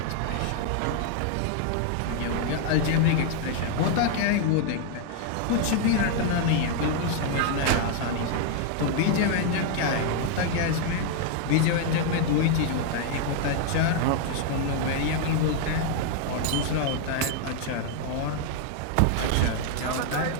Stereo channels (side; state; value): both; different; correlation 0.00